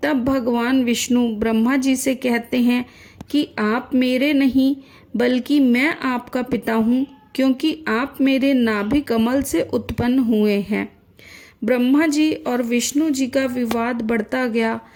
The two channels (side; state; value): both; identical; correlation 1.00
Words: तब भगवान विष्णु ब्रह्मा जी से कहते हैं कि आप मेरे नहीं बल्कि मैं आपका पिता हूँ, क्योंकि आप मेरे नाभि कमल से उत्पन्न हुए हैं। ब्रह्मा जी और विष्णु जी का विवाद बढ़ता गया।